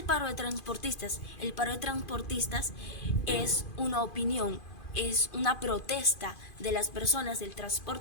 paro de transportistas? El paro de transportistas es una opinión, es una protesta de las personas del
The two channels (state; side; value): late; right; 2.5 ms